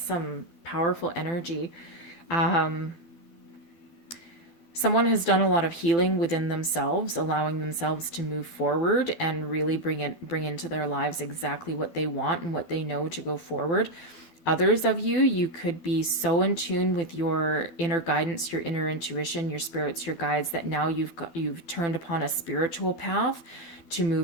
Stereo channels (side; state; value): right; late; 12 ms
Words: some powerful energy. Someone has done a lot of healing within themselves, allowing themselves to move forward and really bring into their lives exactly what they want and what they know to go forward. Others of you, you could be so in tune with your inner guidance, your inner intuition, your spirits, your guides, that now you've turned upon a spiritual path to